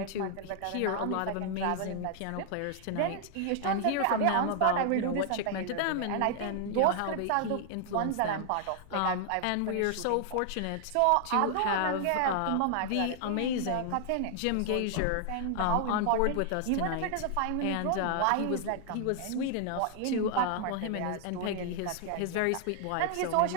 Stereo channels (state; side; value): different; both; correlation 0.00